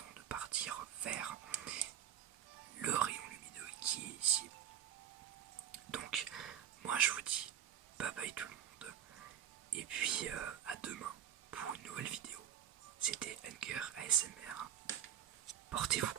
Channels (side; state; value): left; quieter; 10.1 dB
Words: de partir vers le rayon lumineux qui est ici. Donc, moi je vous dis bye bye tout le monde, et puis à demain pour une nouvelle vidéo. C'était Hunger ASMR. Portez-vous